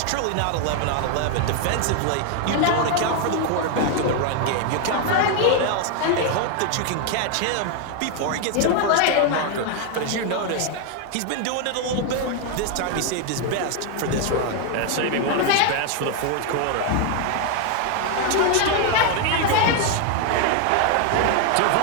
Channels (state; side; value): different; both; correlation 0.00